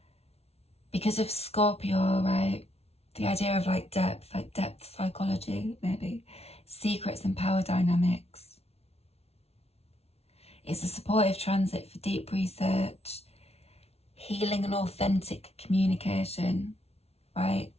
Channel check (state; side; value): late; right; 0.30 ms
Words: Because of Scorpio, right? The idea of like depth psychology, maybe. Secrets and power dynamics. It's a supportive transit for deep research, healing and authentic communication, right?